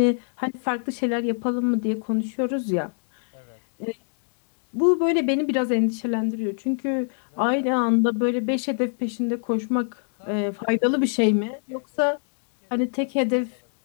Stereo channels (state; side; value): silent; right; digital silence